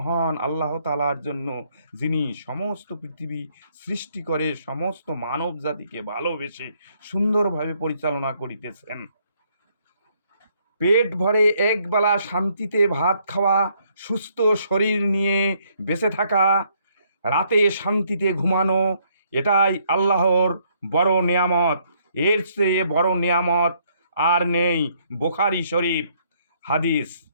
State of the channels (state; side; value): inverted; both; correlation -0.69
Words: আল্লাহ তাআলার জন্য, যিনি সমস্ত পৃথিবী সৃষ্টি করে সমস্ত মানব জাতিকে ভালোবেসে সুন্দরভাবে পরিচালনা করিতেছেন। পেট ভরে একবেলা শান্তিতে ভাত খাওয়া, সুস্থ শরীর নিয়ে বেঁচে থাকা, রাতে শান্তিতে ঘুমানো, এটাই আল্লাহর বড় নেয়ামত। এর চেয়ে বড় নেয়ামত আর নেই। বুখারী শরীফ হাদিস।